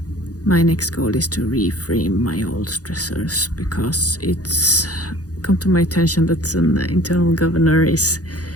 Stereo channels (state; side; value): late; right; 0.67 ms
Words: my next goal is to reframe my old stressors, because it's come to my attention that an internal governor is